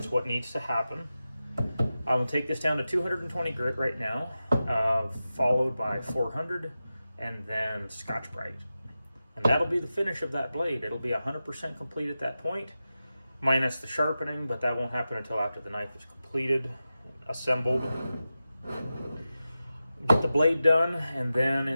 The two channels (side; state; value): both; inverted; correlation -0.93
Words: what needs to happen. I will take this down to 220 grit right now, followed by 400, and then Scotch-Brite. And that'll be the finish of that blade. It'll be 100% complete at that point, minus the sharpening, but that won't happen until after the knife is completed, assembled. Get the blade done, and then